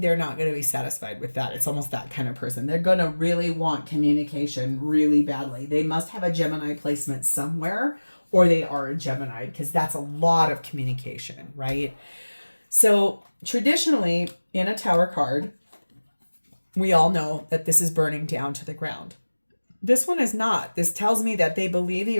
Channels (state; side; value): inverted; both; correlation -1.00